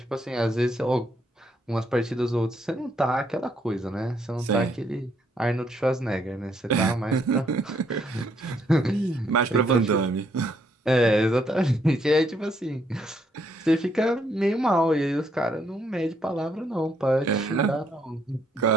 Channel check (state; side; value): normal; both; correlation 0.72